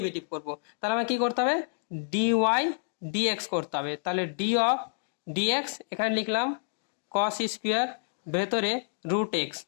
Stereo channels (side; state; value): right; silent; digital silence